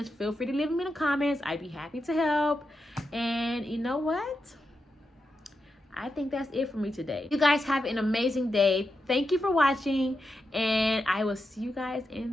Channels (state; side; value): normal; both; correlation 0.87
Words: feel free to leave them in the comments. I'd be happy to help. And you know what? I think that's it for me today. You guys have an amazing day. Thank you for watching, and I will see you guys